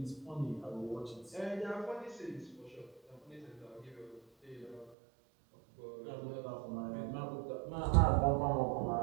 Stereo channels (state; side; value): drops out; left; at 5.0 s